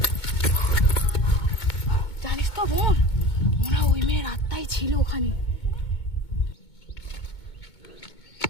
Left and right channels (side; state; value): right; late; 2.2 ms